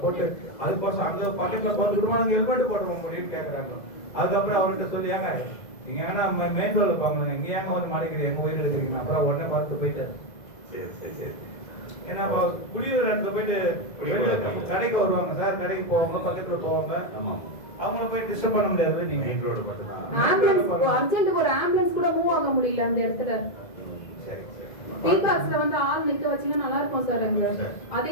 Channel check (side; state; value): right; late; 2.0 ms